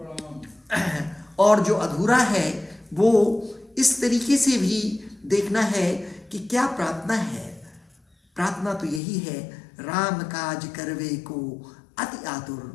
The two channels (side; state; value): right; drops out; at 9.0 s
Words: और जो अधूरा है वो इस तरीके से भी देखना है कि क्या प्रार्थना है। प्रार्थना तो यही है, राम काज करवे को अति